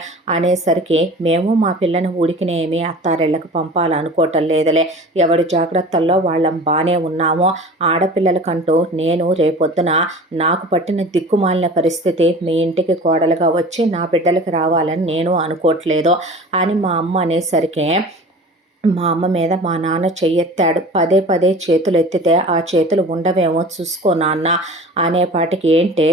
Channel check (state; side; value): normal; both; correlation 0.39